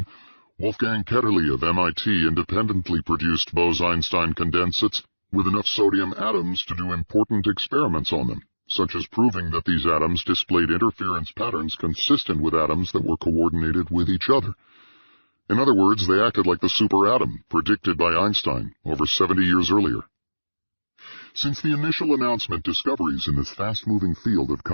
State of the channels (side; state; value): both; inverted; correlation -1.00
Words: Wolfgang Ketterle of MIT independently produced Bose-Einstein condensates with enough sodium atoms to do important experiments on them, such as proving that these atoms displayed interference patterns consistent with atoms that were coordinated with each other. In other words, they acted like the superatom predicted by Einstein over 70 years earlier. Since the initial announcement, discoveries in this fast-moving field have